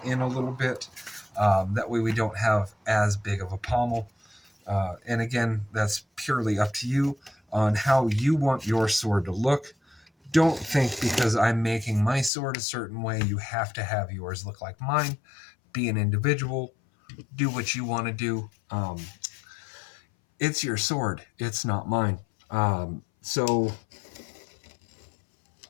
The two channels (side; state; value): right; drops out; at 12.3 s